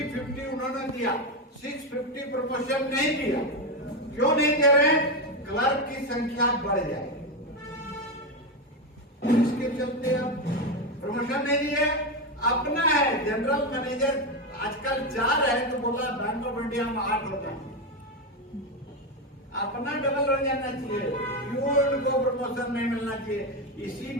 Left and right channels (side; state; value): both; normal; correlation 0.11